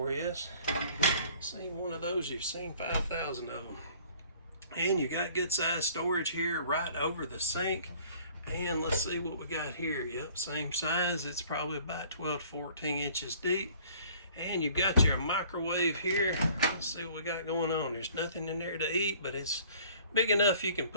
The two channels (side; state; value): both; inverted; correlation -0.53